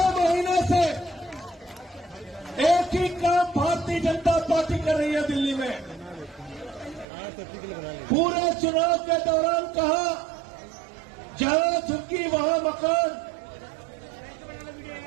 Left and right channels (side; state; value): left; drops out; at 7.1 s